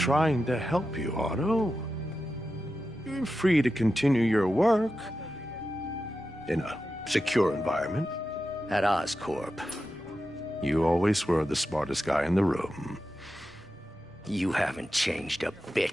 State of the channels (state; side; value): normal; both; correlation 0.91